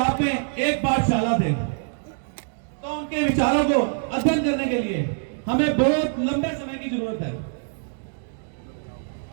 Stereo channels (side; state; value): left; silent; digital silence